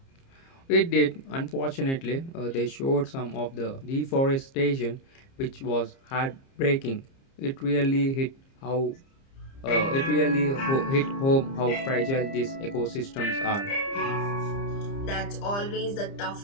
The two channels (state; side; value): late; right; 30 ms